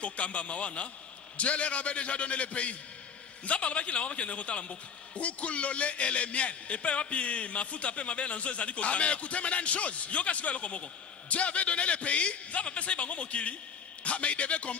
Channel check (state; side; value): quieter; right; 6.7 dB